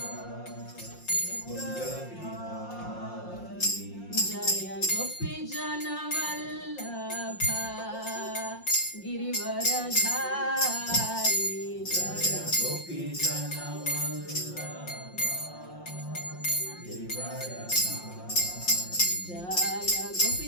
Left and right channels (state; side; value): late; right; 5.6 ms